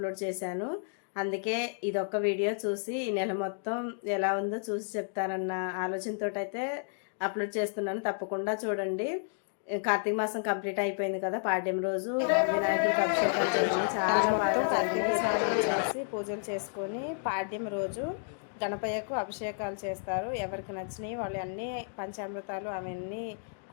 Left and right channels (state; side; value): silent; right; digital silence